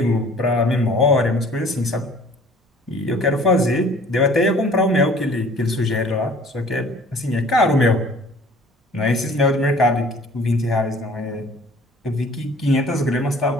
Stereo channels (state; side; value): normal; both; correlation 0.51